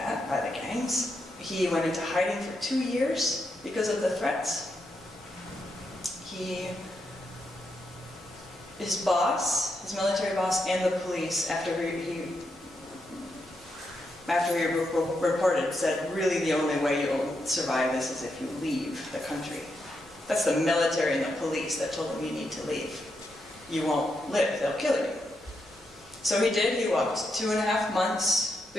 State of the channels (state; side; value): normal; both; correlation 0.83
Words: by the gangs. He went into hiding for 2 years because of the threats. His boss, his military boss, and the police, after he reported, said, really the only way you'll survive this is if you leave the country. That's the military and the police that told him you need to leave. You won't live, they'll kill you. So he did, he walked 2.5 months,